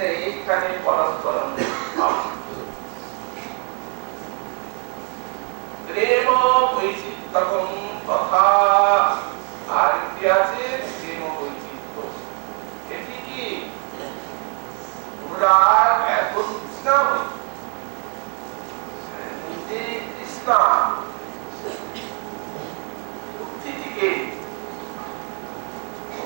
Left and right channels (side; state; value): left; quieter; 38.8 dB